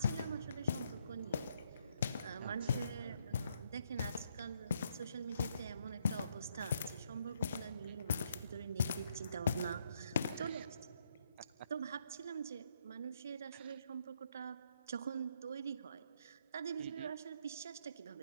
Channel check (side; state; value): both; inverted; correlation -0.73